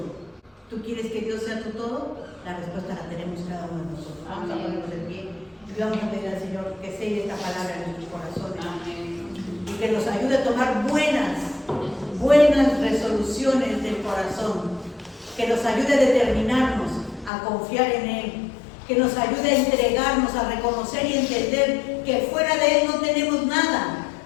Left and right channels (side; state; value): right; drops out; at 17.3 s